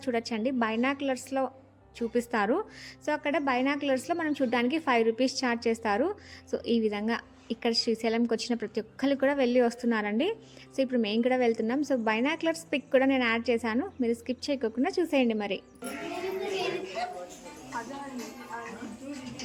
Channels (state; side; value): identical; both; correlation 1.00